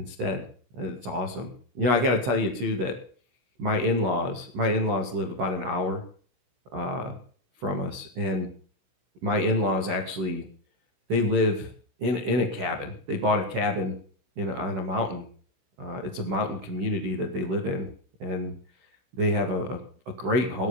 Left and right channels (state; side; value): late; left; 16 ms